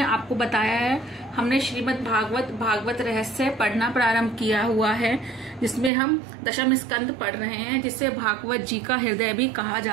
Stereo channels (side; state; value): left; drops out; at 5.9 s